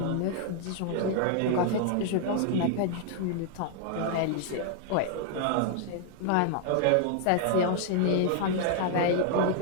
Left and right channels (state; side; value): different; both; correlation 0.00